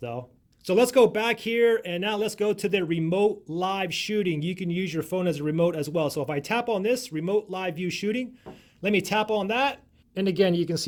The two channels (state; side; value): identical; both; correlation 1.00